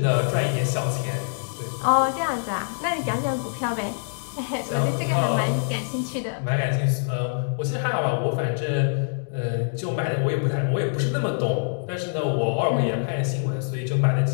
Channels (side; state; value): right; silent; digital silence